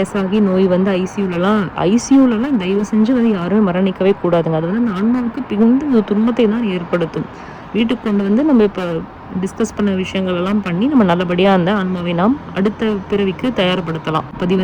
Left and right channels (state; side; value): identical; both; correlation 1.00